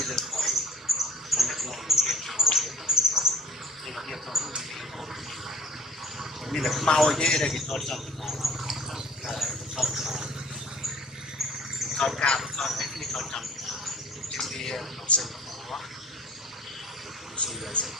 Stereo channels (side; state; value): both; normal; correlation 0.51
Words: lên khỏi mình là mau chứ đây thì thôi xong con cao con ấy thì con trồng trên đi học sinh quá